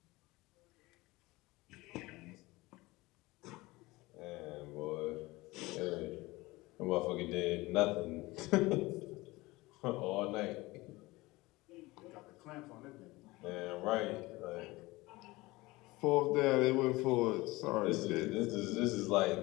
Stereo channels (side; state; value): right; quieter; 21.0 dB